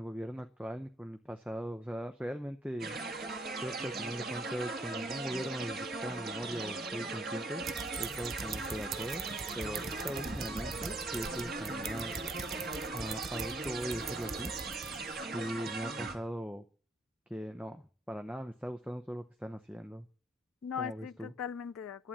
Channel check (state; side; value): normal; both; correlation 0.68